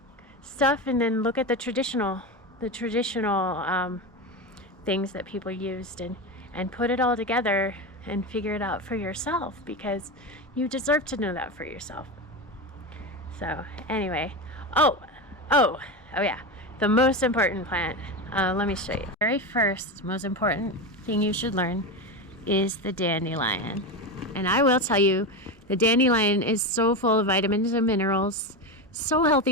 stuff, and then look at the traditional things that people used, and put it all together and figure it out for yourself, because you deserve to know that for yourself. So anyway, oh yeah, the most important plant, let me show you. The very first most important thing you should learn is the dandelion. And I will tell you, the dandelion is so full of vitamins and minerals, so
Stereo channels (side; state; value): both; normal; correlation 0.18